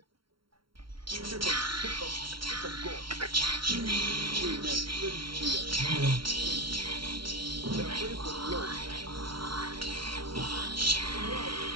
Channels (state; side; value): late; left; 0.73 ms